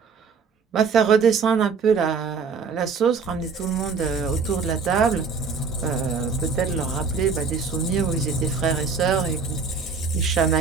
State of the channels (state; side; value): quieter; left; 5.3 dB